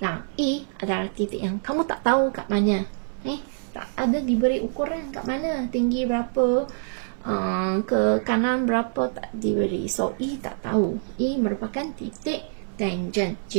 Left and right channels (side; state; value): left; silent; digital silence